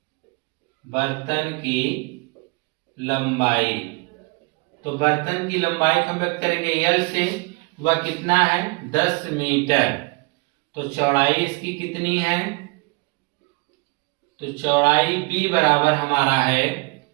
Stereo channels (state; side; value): quieter; left; 28.7 dB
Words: लंबाई। तो बर्तन की लंबाई को हम व्यक्त करेंगे L से, वह कितना है 10 मीटर। तो चौड़ाई इसकी कितनी है, तो चौड़ाई B बराबर हमारा है